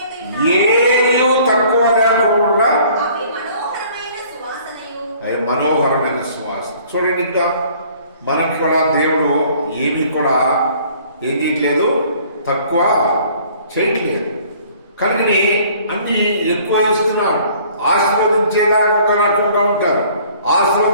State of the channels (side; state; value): both; inverted; correlation -0.55